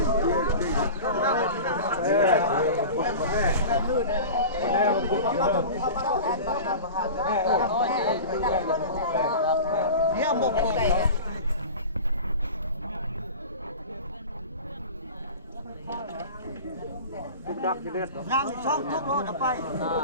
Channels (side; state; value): both; inverted; correlation -0.34